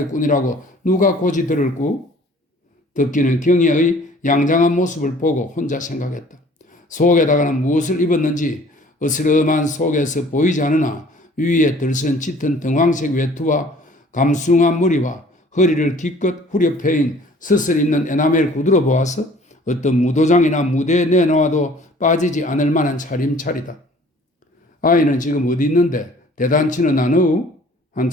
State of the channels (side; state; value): both; normal; correlation 0.52